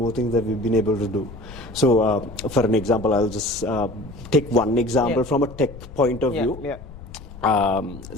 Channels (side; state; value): left; noise; rumble, 15 dB below the sound